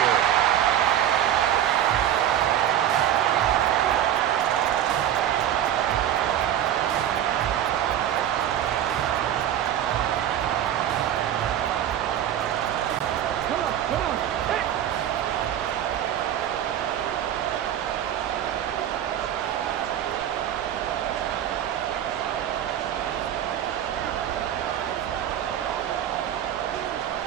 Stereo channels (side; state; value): left; quieter; 10.8 dB